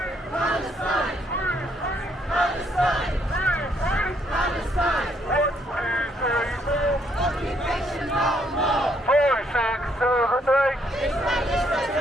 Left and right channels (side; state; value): both; normal; correlation 0.71